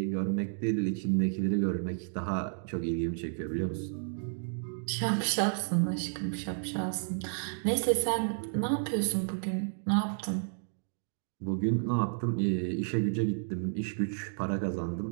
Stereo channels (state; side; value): silent; left; digital silence